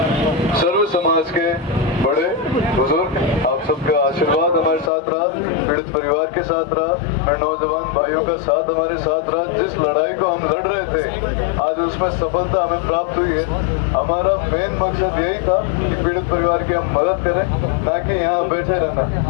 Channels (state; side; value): drops out; right; at 4.9 s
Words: सर्व समाज के बड़े बुजुर्ग, आप सबका आशीर्वाद हमारे साथ रहा, पीड़ित परिवार के साथ रहा, नौजवान भाइयों का साथ हमारे साथ रहा। जिस लड़ाई को हम लड़ रहे थे आज उसमें सफलता हमें प्राप्त हुई है। हमारा मेन मकसद यही था कि पीड़ित परिवार की हम मदद करें, ना कि यहाँ बैठे रहना।